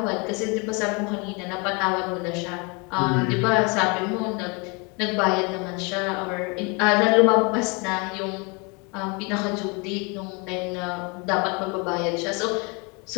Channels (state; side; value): quieter; right; 30.7 dB